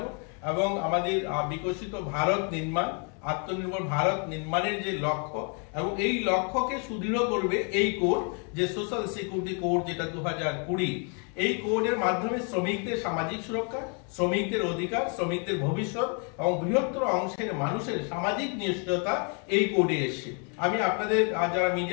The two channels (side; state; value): right; quieter; 38.8 dB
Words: এবং আমাদের বিকশিত ভারত নির্মাণ, আত্মনির্ভর ভারত নির্মাণের যে লক্ষ্য এবং এই লক্ষ্যকে সুদৃঢ় করবে এই কোড, যে সোশ্যাল সিকিউরিটি কোড, যেটা 2020। এই কোডের মাধ্যমে শ্রমিকদের সামাজিক সুরক্ষা, শ্রমিকদের অধিকার, শ্রমিকদের ভবিষ্যৎ এবং বৃহত্তর অংশের মানুষের সামাজিক নিশ্চয়তা এই কোডে এসছে। আমি আপনাদের যারা